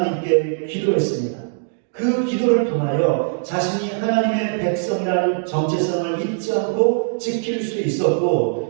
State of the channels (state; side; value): silent; left; digital silence